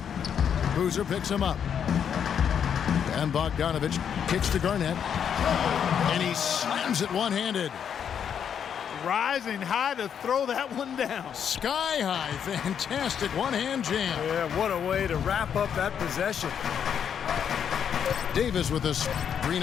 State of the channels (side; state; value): right; quieter; 8.1 dB